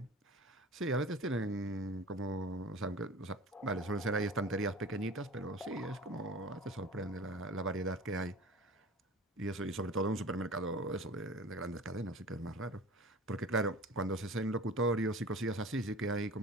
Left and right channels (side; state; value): both; normal; correlation 0.39